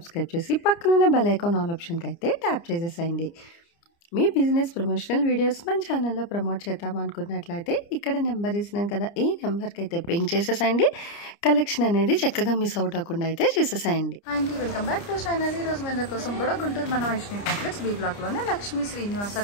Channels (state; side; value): late; right; 29 ms